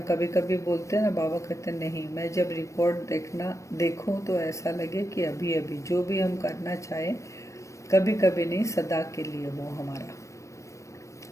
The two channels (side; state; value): right; late; 0.15 ms